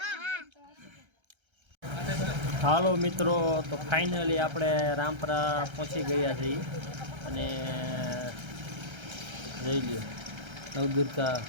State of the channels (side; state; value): left; late; 1.3 ms